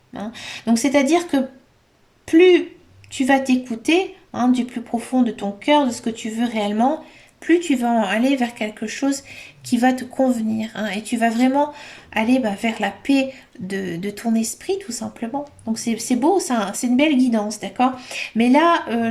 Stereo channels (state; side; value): identical; both; correlation 1.00